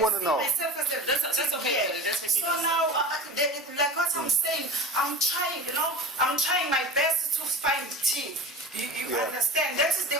to know. That's okay. That's okay. So now, like what I'm saying, I'm trying my best to find tea. You Yeah. understand? That is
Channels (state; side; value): normal; both; correlation 0.33